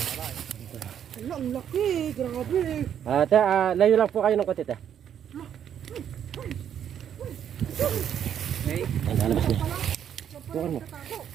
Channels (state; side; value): quieter; left; 9.2 dB